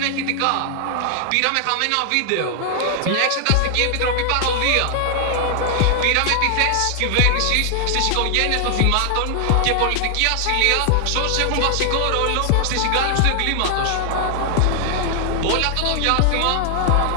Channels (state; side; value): different; both; correlation 0.00